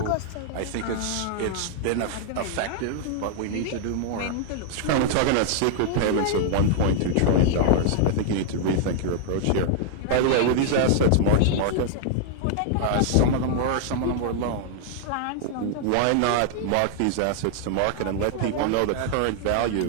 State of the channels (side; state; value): both; different; correlation -0.01